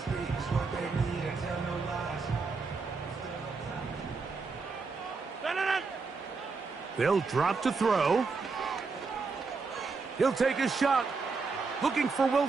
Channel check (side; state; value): left; quieter; 4.5 dB